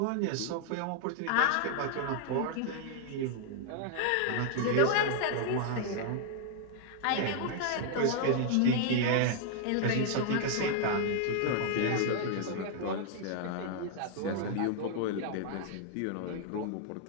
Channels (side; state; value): both; different; correlation 0.00